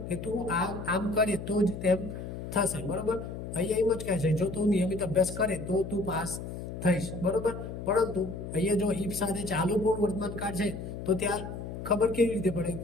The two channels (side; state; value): left; noise; hum, 8 dB below the sound